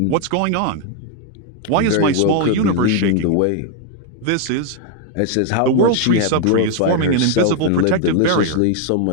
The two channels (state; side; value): different; both; correlation 0.01